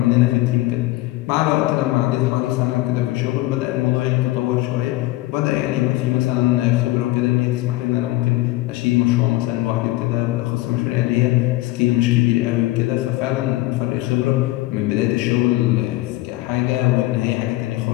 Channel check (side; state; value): right; quieter; 18.4 dB